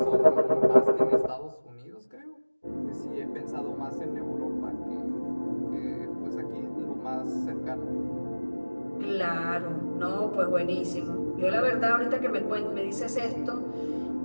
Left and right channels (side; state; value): both; inverted; correlation -1.00